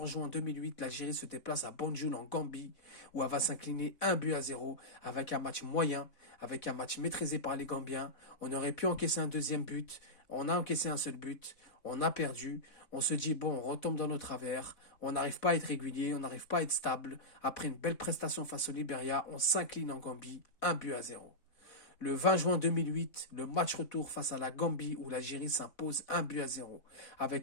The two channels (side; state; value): right; late; 4.1 ms